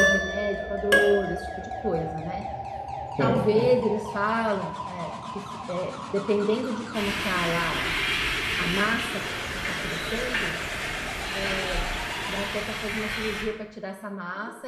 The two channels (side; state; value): both; identical; correlation 1.00